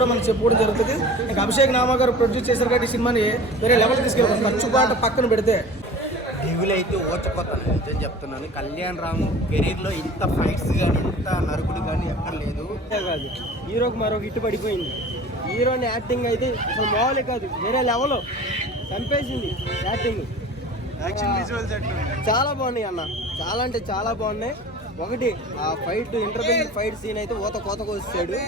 మనం చెప్పుకోవడం జరుగుతుంది. ఇంకా అభిషేక్ నామా గారు ప్రొడ్యూస్ చేశారు కాబట్టి ఈ సినిమాని వేరే లెవెల్ తీసుకెళ్ళారు. ఖర్చు పాట పక్కన పెడితే డెవిల్ అయితే ఓచపోతాను, నిజం చెప్తున్నాను. కళ్యాణ్ రామ్ కెరీర్లో ఇంత ఫైట్స్ కానీ ఇంత నరుకుడు కానీ ఎక్కడ లేదు. కాదు, హీరోకి మరొక హిట్ పడిపోయింది. హీరోని యాక్టింగ్ అయితే అసలు మామూలే కాదు, వేరే లెవెల్ చంపేసింది యాక్టింగ్. చాలా బాగున్నాయి అన్న, చాలా అంటే చాలా బాగున్నాయి. ఒకటి ఆ ఫైట్, ఇంటర్వెల్ ఫైట్ సీన్ అయితే కోతకు వచ్చాడు.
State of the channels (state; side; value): normal; both; correlation 0.41